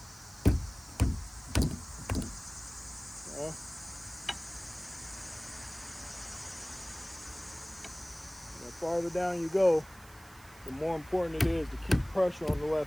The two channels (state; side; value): noise; right; hiss, 22 dB below the sound